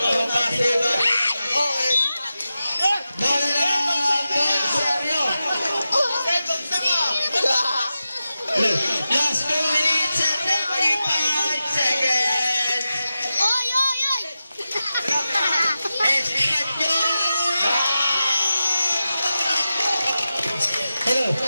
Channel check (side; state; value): both; inverted; correlation -0.92